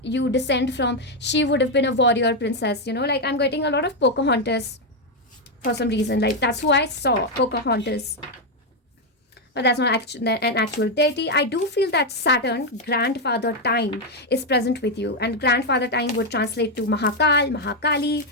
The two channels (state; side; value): normal; both; correlation 0.03